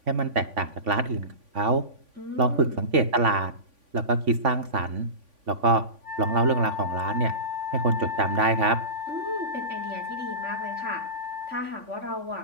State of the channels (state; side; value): late; left; 3.5 ms